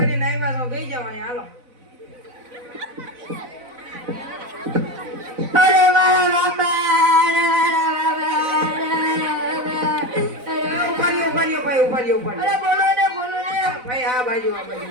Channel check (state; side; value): late; left; 4.0 ms